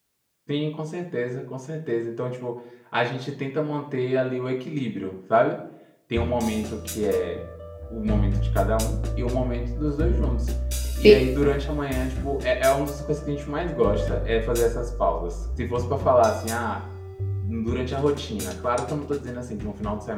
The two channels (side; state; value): both; identical; correlation 1.00